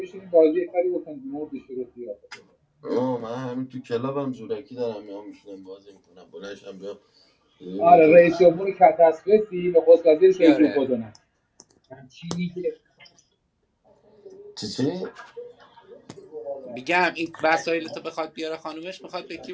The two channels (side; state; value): both; identical; correlation 1.00